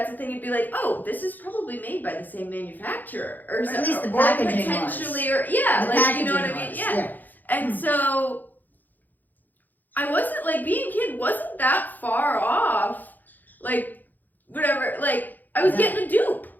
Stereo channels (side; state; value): right; late; 0.085 ms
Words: a thing, you'd be like, oh, this is probably made by the same manufacturer, or at least the or packaging potentially, was. or yeah, The like you know what I packaging mean, was, yeah. And so I wasn't like, being a kid wasn't that far off, like whatever, like I was getting a dupe,